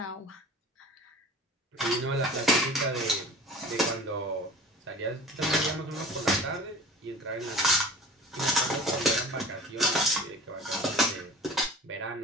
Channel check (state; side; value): normal; both; correlation 0.41